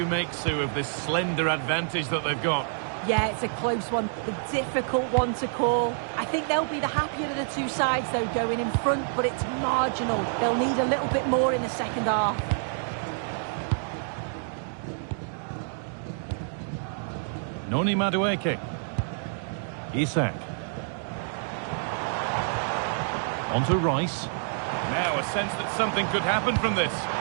make, Sue, of this slender advantage that they've got? Yeah, it's a close one, a difficult one to call. I think they'll be the happier of the two sides, though, going in front, but it's marginal. They'll need a little bit more in the second half. Noni Madueke. Isak. Onto Rice. Now a sense that something could happen from this.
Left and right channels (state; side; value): silent; left; digital silence